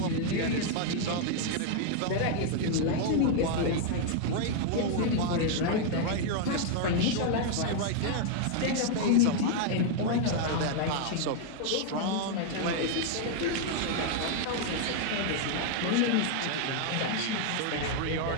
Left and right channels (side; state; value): both; different; correlation 0.00